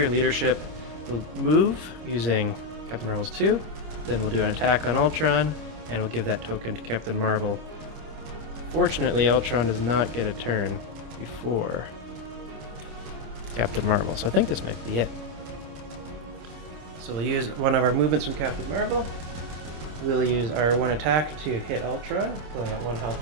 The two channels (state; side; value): late; left; 26 ms